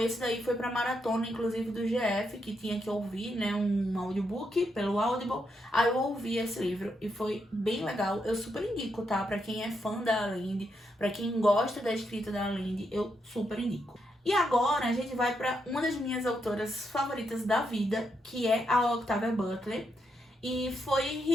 daí foi pra maratona, inclusive do GF, que tinha que ouvir, né, um audiobook pelo Audible. Aí eu ouvi esse livro e foi bem legal. Eu super indico, tá? Pra quem é fã da Linde, pra quem gosta da escrita da Linde, eu super indico. E agora a gente vai pra uma das minhas autoras favoritas da vida, que é a Octavia Butler. E foi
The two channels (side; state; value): both; normal; correlation 0.81